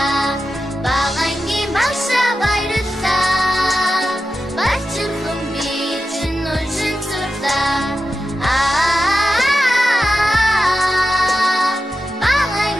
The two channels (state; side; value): normal; both; correlation 0.90